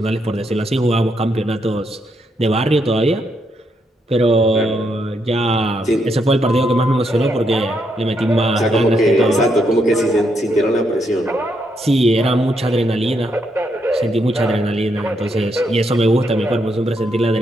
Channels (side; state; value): both; normal; correlation 0.78